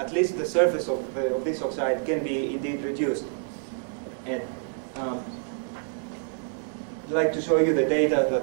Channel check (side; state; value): left; silent; digital silence